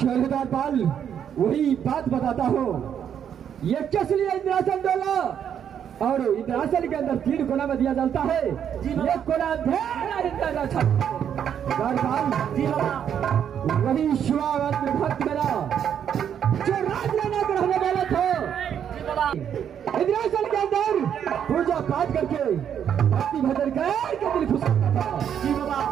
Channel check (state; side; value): quieter; left; 8.8 dB